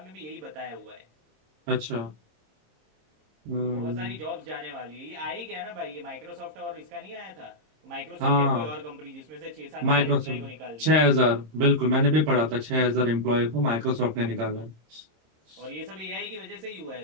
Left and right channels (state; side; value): late; left; 26 ms